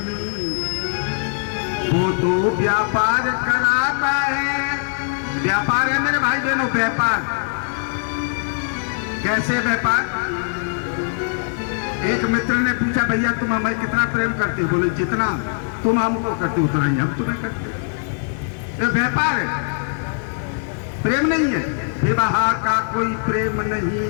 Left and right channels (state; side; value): silent; right; digital silence